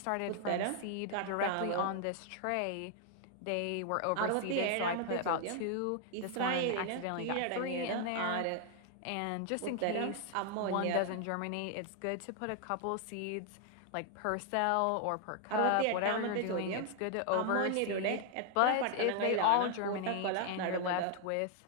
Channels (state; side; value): different; both; correlation 0.00